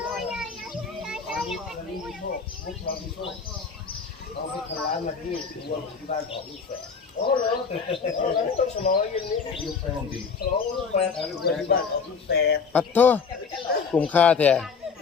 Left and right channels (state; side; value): quieter; right; 5.6 dB